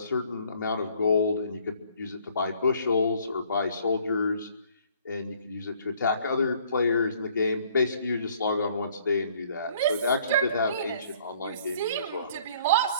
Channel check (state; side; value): inverted; both; correlation -0.59